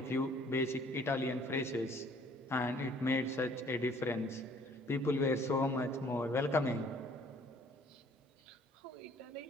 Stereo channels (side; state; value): both; normal; correlation 0.58